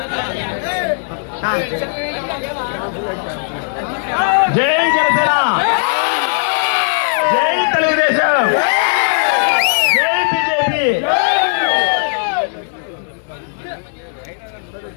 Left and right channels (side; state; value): right; silent; 66 dB below the other